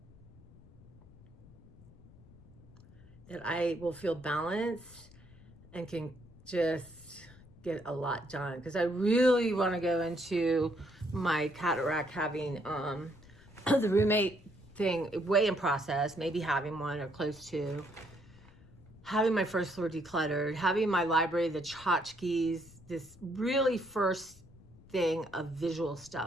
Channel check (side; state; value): left; noise; rumble, 23 dB below the sound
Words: That I will feel balanced and can just get a lot done. Because I really want to go into my cataract having the roommate thing way in process, maybe having one or close to. Having my first floor decluttered, having my library, the tchotchkes, this really first thing of visual